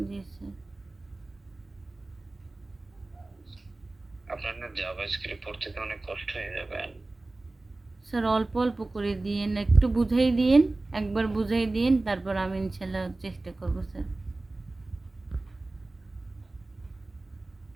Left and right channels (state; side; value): quieter; left; 3.0 dB